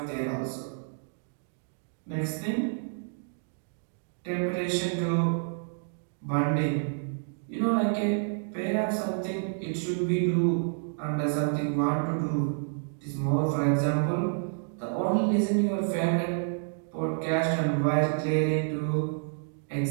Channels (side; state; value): left; silent; digital silence